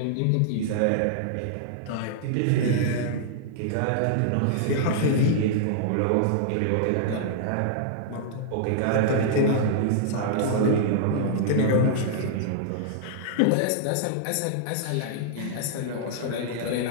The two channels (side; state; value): both; different; correlation -0.01